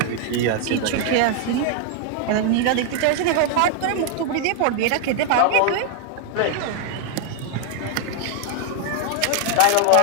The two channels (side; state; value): both; different; correlation 0.00